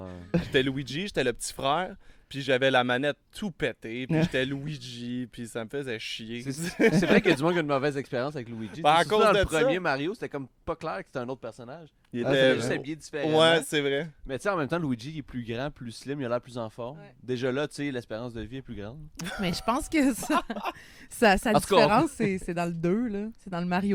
j'étais Luigi, j'étais le petit frère, puis j'avais la manette tout pétée, puis j'étais Luigi, puis ça me faisait chier. C'est vrai qu'il y a du monde qui a une mauvaise expérience avec Luigi. À cause dans de le premier ça, Mario, c'était comme pas clair que c'était un autre personnage. Il était juste habillé différemment. Ouais, c'est vrai. Mais tu sais, en même temps, Luigi il est plus grand, plus slim, il a l'air plus en forme. Ouais. Déjà là, tu sais, l'espérance de vie est plus grande. Mais je pense que sa différence, c'est dans le 2, là. C'est dans le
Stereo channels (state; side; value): identical; both; correlation 1.00